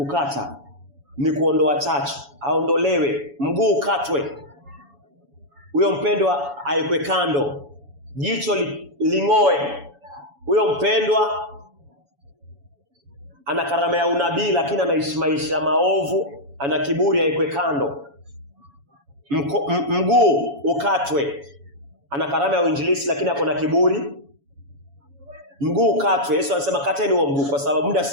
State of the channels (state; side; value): late; left; 7.1 ms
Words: ni kuondoa chachu. Aondolewe, mguu ukatwe. Huyo mpendwa aekwe kando. Jicho ling'oe. Huyo mpendwa ana karama ya unabii lakini anaishi maisha maovu, ana kiburi, aekwe kando. Mguu ukatwe. Ana karama ya uinjilisti lakini ako na kiburi. Mguu ukatwe. Yesu anasema kateni huo mguu kwa sababu muda